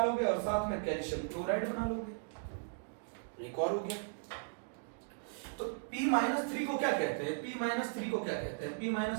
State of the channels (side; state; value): left; silent; digital silence